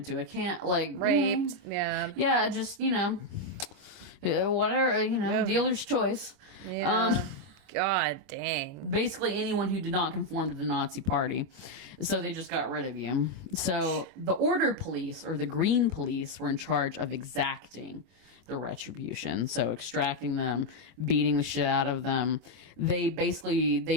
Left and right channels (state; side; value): late; left; 21 ms